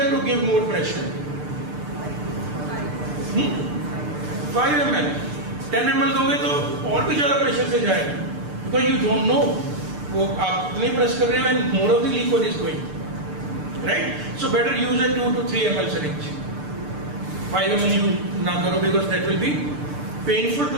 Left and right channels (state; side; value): late; left; 6.7 ms